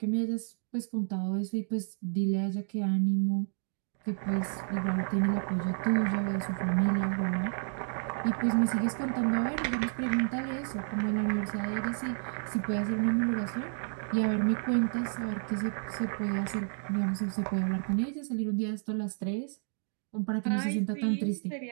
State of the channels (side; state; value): left; silent; 57 dB below the other